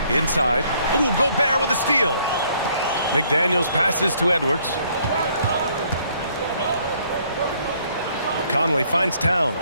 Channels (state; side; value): inverted; both; correlation -0.65